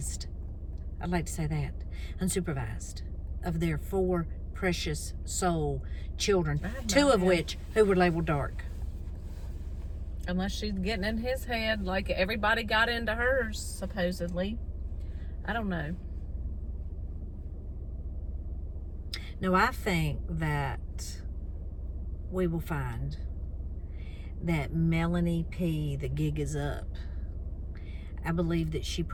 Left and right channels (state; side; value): identical; both; correlation 1.00